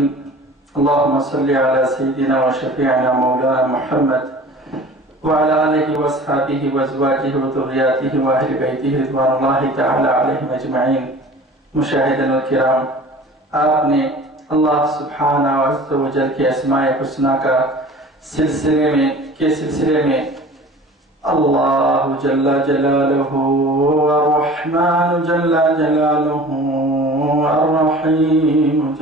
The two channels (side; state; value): both; normal; correlation 0.42